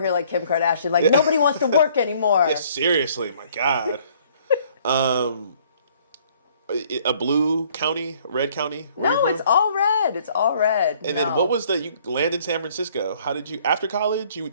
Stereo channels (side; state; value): both; inverted; correlation -0.60